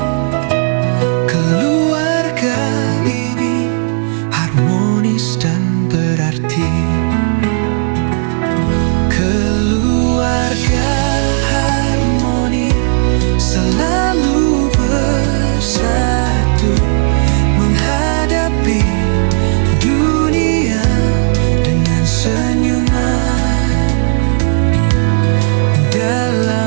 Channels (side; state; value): left; silent; 61 dB below the other